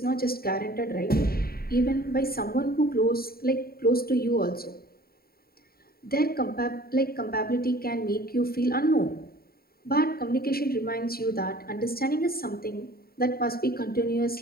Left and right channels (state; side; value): late; right; 0.44 ms